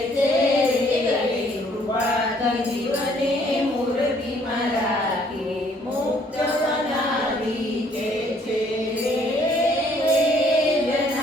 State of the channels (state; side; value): normal; both; correlation 0.63